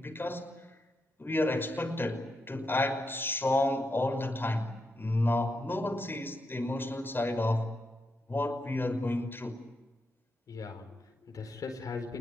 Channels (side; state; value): both; normal; correlation 0.83